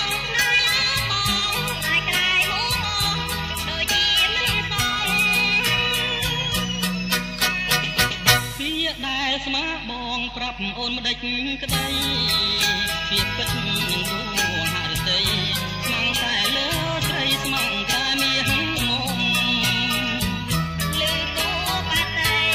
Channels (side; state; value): both; identical; correlation 1.00